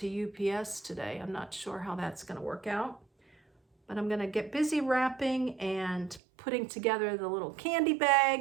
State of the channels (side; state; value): left; drops out; at 6.2 s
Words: UPS today. I'm not sure how that's going to work out. But I'm going to get busy wrapping and putting together the little candy